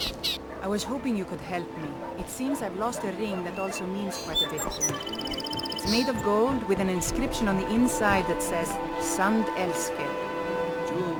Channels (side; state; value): both; identical; correlation 1.00